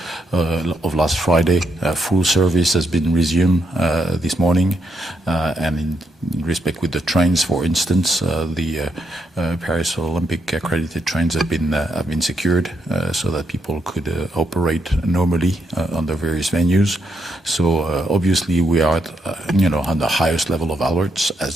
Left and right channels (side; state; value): both; normal; correlation 0.79